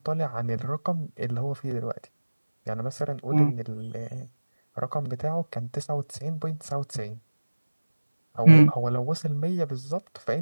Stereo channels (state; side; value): inverted; both; correlation -1.00